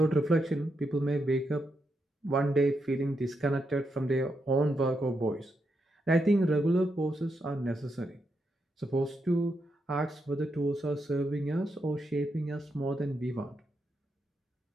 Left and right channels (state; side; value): normal; both; correlation 0.83